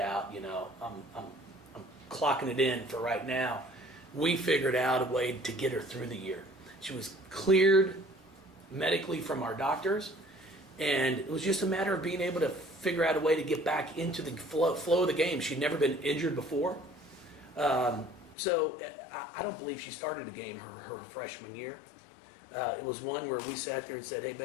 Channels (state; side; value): drops out; right; at 18.4 s